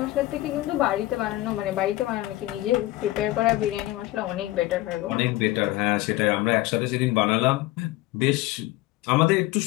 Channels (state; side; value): quieter; right; 17.7 dB